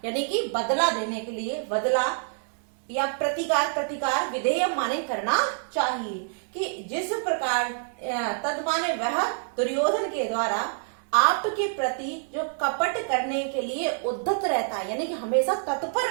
यानी कि बदला देने के लिए, बदला या प्रतिकार, प्रतिकार विधेयम माने करना चाहिए, कि जिस प्रकार तद माने वह दुर्योधन के द्वारा आपके प्रति जो कपट करने के लिए उद्धत रहता है, यानी कि हमेशा तत्पर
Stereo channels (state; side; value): silent; left; digital silence